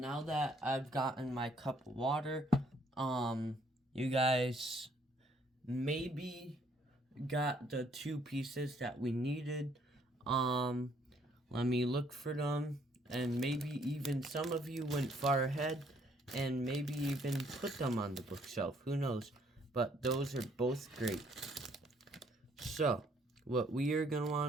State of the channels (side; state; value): both; normal; correlation 0.66